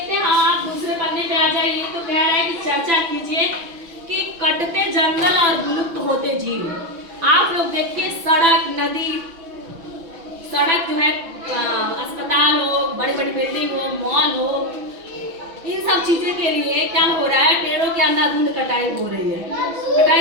हैं। हाँ, आप दूसरे पन्ने पे आ जाइए। तो कह रहा है कि चर्चा कीजिए कि कटते जंगल और विलुप्त होते जीव। आप लोग देखिए, सड़क, नदी, सड़क जो है, अस्पताल हो, बड़ी बड़ी बिल्डिंग हो, मॉल हो, इन सब चीजें के लिए क्या हो रहा है? पेड़ों के अंधाधुंध कटाई हो रही है।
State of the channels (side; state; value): left; late; 6.0 ms